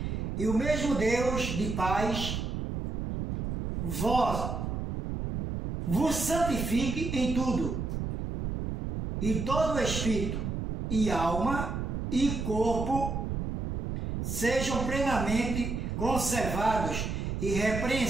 e o mesmo Deus de paz vos santifique em tudo, e todo o espírito e alma e corpo sejam plenamente conservados e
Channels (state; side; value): noise; right; rumble, 3 dB below the sound